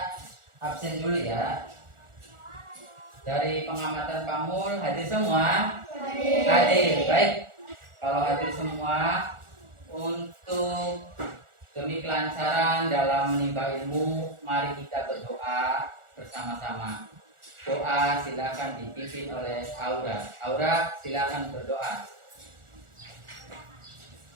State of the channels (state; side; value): late; left; 1.4 ms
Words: absen dulu ya. Dari pengamatan Pak Mul, hadir semua? Hadir, baik. Kalau hadir semua, untuk demi kelancaran dalam menimba ilmu, mari kita berdoa bersama-sama. Doa silakan dipimpin oleh Aura. Aura, silakan berdoa.